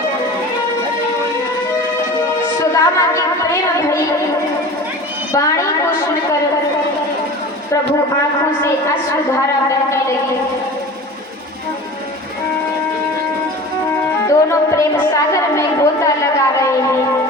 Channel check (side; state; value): both; normal; correlation 0.37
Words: सुदामा की प्रेम भरी वाणी को सुनकर प्रभु आंखों से अश्रुधारा बहने लगी। दोनों प्रेम सागर में गोता लगा रहे हैं,